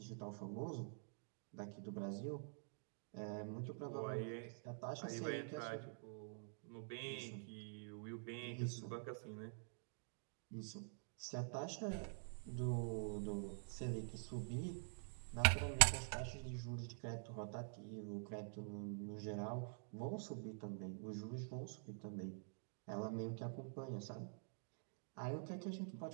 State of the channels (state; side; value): silent; left; digital silence